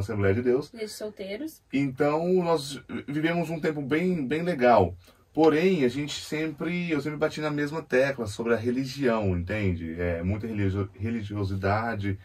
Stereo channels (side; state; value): both; identical; correlation 1.00